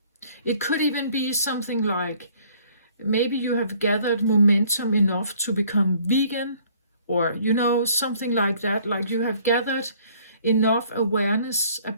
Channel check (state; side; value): inverted; both; correlation -0.58